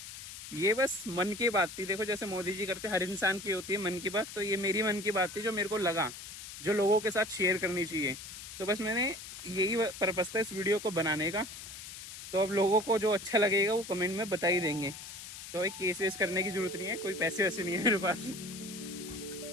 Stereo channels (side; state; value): left; noise; hiss, 12 dB below the sound